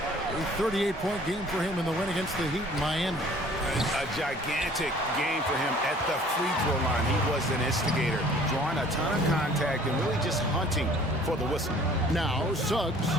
38-point game for him in the win against the Heat in Miami. A gigantic game for him at the free throw line. He was an instigator, drawing a ton of contact and really just hunting for the whistle. Now Suggs,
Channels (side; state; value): both; normal; correlation 0.52